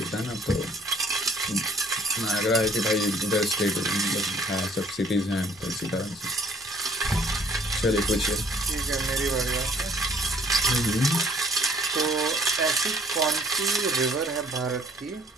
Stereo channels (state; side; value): normal; both; correlation 0.59